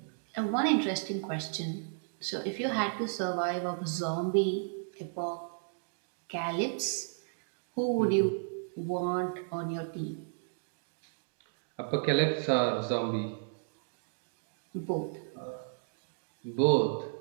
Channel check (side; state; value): left; silent; digital silence